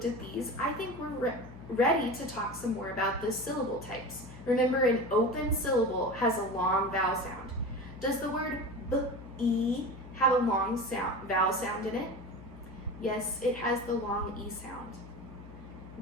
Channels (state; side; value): noise; left; hum, 15 dB below the sound